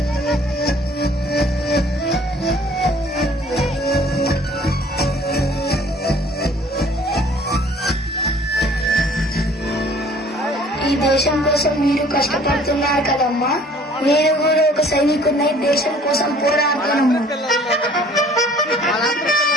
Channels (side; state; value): both; normal; correlation 0.54